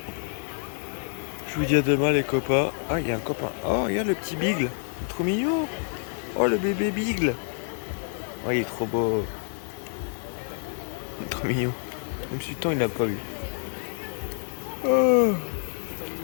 Je vous dis à demain les copains. Ah il y a un copain. Oh regarde le petit Bigle. Trop mignon. Oh le bébé Bigle. Oh il est trop beau. Il est trop mignon. Même si le temps il l'a pas vu. Oh.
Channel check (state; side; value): silent; right; digital silence